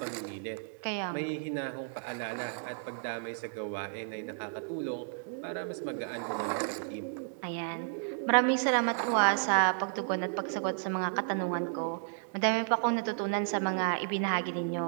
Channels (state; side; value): silent; left; digital silence